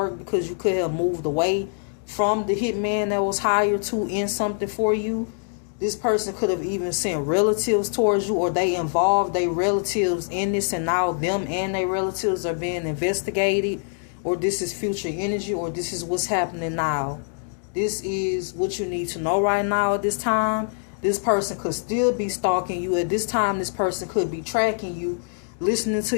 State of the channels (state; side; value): silent; right; digital silence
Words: because you could have moved away from the hitman that was hired to end something for you. This person could have even sent relatives towards you, or they involved their relatives in this, and now them and their relatives are being investigated. Or this is future energy, or this is what's happening now. This is what you need to know right now at this time. This person could still be stalking you. At this time, this person could be tracking you, listening to